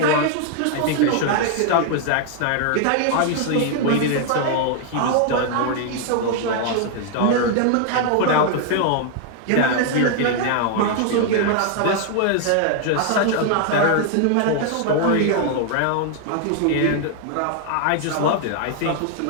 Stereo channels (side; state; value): both; different; correlation 0.00